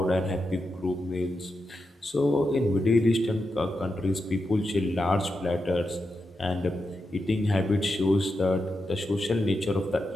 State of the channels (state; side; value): normal; both; correlation 0.87